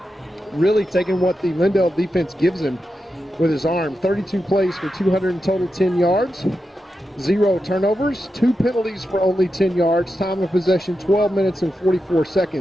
really taking what the Lindale defense gives him with his arm. 32 plays for 210 yards, 0 turnovers, 2 penalties for only 10 yards. Time of possession, 12 minutes and 44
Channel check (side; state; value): both; normal; correlation 0.89